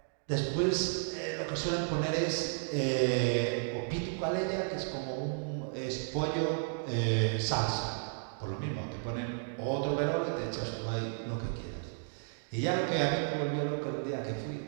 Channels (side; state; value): left; silent; digital silence